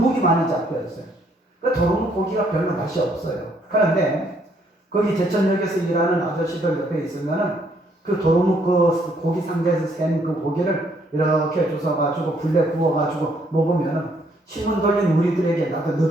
많이 잡혔어요. 그 도루묵 고기가 별로 맛이 없어요. 그런데 거기 제천역에서 일하는 아저씨들 옆에 있으면은 그 도루묵 그 고기 상자에서 센 그 고기를 이렇게 주워가지고 불에 구워가지고 먹으면은 신문 돌린 우리들에게 나도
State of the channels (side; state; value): both; normal; correlation 0.68